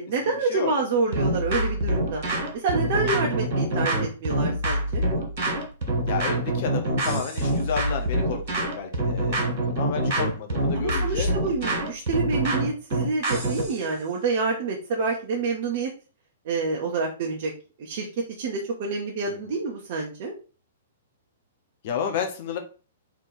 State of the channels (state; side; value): inverted; both; correlation -0.45